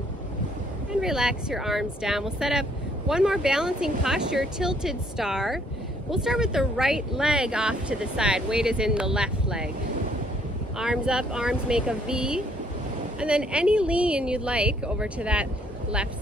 and relax your arms down. We'll set up one more balancing posture, tilted star. We'll start with the right leg off to the side. Weight is in the left leg. Arms up, arms make a V. And then any lean you'd like over to that left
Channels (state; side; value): normal; both; correlation 0.65